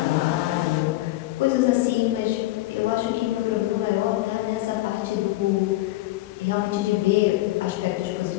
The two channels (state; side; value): quieter; right; 17.5 dB